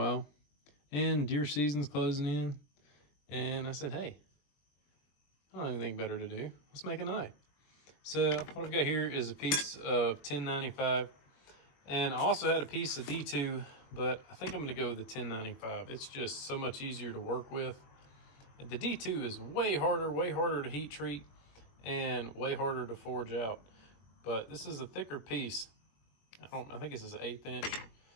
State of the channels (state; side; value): late; right; 21 ms